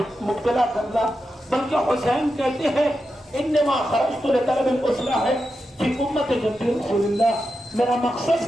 مبتلا کرنا، بلکہ حسین کہتے ہیں انما خرجت لطلب الاصلاح فی امت جد رسول اللہ، میرا مقصد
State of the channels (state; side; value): normal; both; correlation 0.89